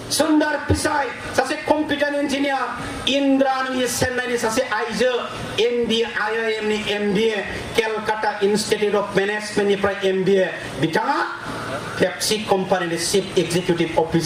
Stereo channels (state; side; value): identical; both; correlation 1.00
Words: सुन्दर पिचाई सासे कम्पिउटार इन्जिनियार इन्द्राणी चेन्नाईनि सासे आइजो MBA IIMनि MBA केलकाता इन्स्टिट्यूट अफ मेनेजमेन्टनिफ्राय MBA बिथाङा पेप्सि कम्पानिनि चिफ एक्जिकिउटिभ